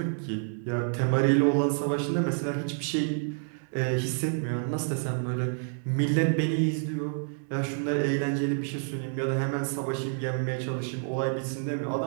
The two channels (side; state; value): left; silent; digital silence